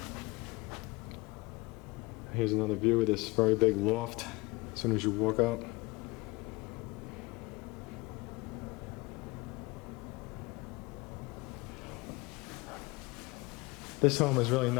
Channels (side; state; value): right; quieter; 24.0 dB